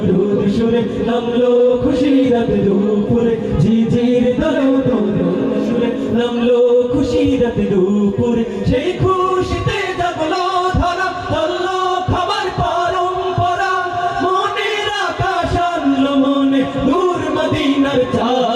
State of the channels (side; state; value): both; identical; correlation 1.00